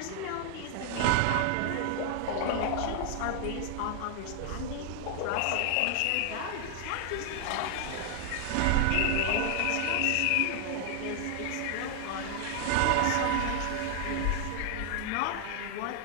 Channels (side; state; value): both; different; correlation 0.00